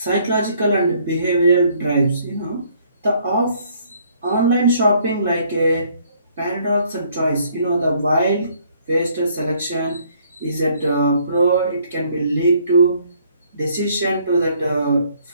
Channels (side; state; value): both; inverted; correlation -0.64